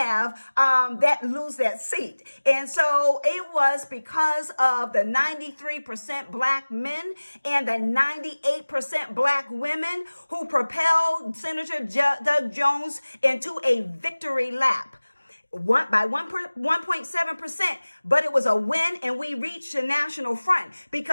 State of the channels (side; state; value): both; inverted; correlation -1.00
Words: lose that seat. And so it was because of the 93% Black men and the 98% Black women who propelled Senator Doug Jones into a victory lap. By 1.7%, but it was a win, and we reached the national front